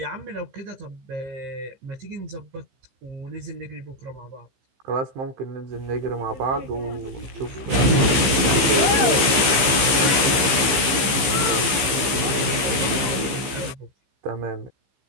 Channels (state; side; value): late; left; 15 ms